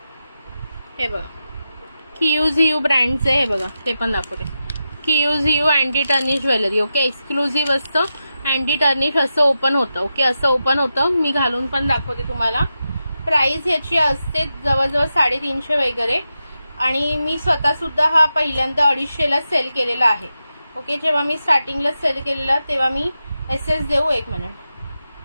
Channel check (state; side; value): inverted; both; correlation -0.90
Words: हे बघा, क्यूज ब्रँडचे. हे बघा, ते पण दाखवते. क्यूज anti tarnish jewellery. Okay, exclusive असतं. अँटी टर्निश असं ओपन होतं. ओके, असं ओपन होतं. मी घालून पण दाखवते तुम्हाला. प्राइस याची असते जवळजवळ 350 वगैरे, आणि मी स्वतः सुद्धा हा पहिल्यांदा 250ला सेल केलेला आहे. ओके, जेव्हा मी स्टार्टिंगला सेल केलेला तेव्हा मी SS देऊ. 1 मिनिट.